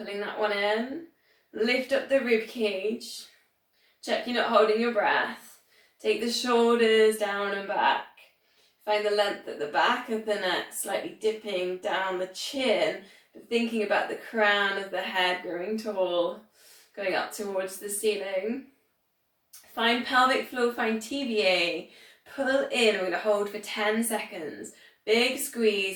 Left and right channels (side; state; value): both; identical; correlation 1.00